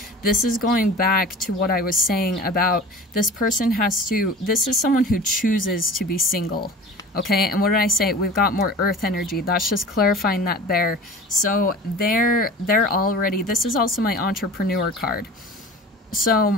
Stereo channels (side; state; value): both; normal; correlation 0.39